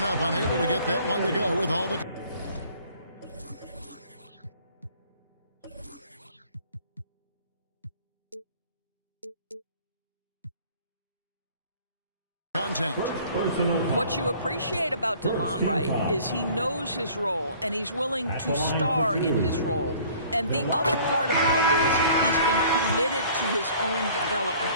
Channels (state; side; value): inverted; both; correlation -0.52